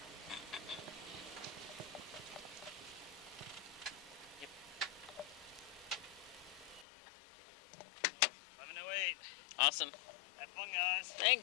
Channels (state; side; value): drops out; right; at 6.9 s